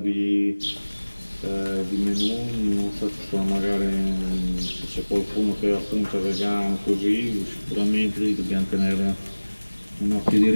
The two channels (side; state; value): both; inverted; correlation -1.00